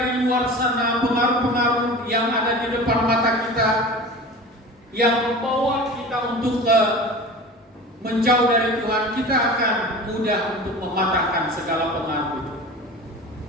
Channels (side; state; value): both; normal; correlation 0.35